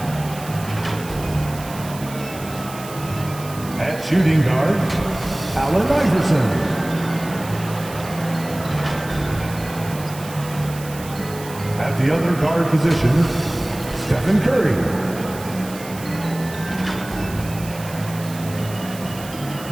At shooting guard, Allen Iverson. At the other guard position, Stephen Curry.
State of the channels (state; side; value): noise; right; hiss, 15 dB below the sound